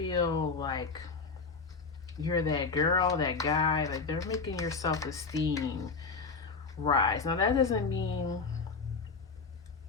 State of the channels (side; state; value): right; quieter; 4.7 dB